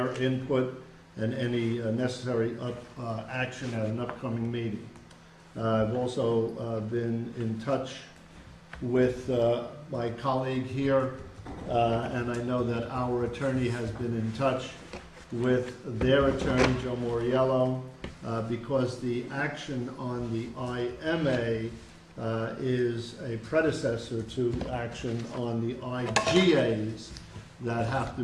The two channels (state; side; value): identical; both; correlation 1.00